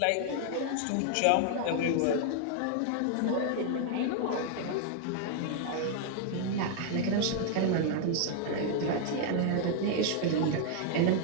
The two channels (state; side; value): different; both; correlation 0.00